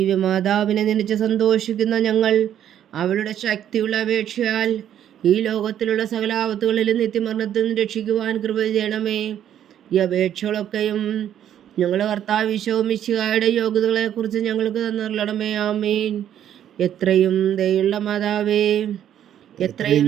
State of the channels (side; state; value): left; quieter; 10.4 dB